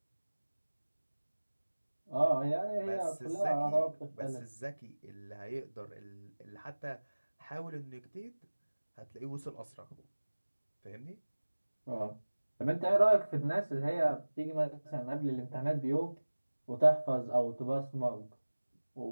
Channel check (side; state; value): both; inverted; correlation -1.00